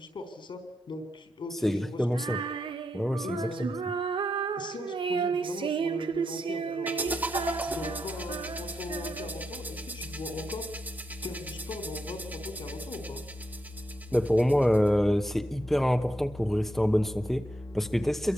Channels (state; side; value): normal; both; correlation 0.84